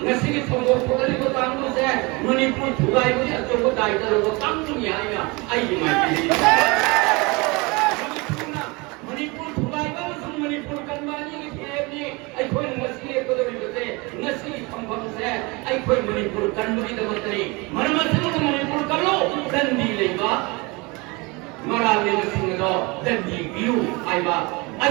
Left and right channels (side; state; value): left; quieter; 25.9 dB